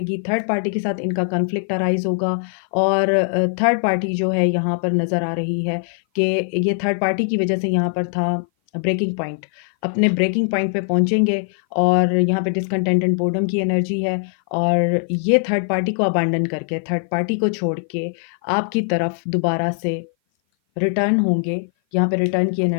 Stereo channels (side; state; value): right; silent; 57 dB below the other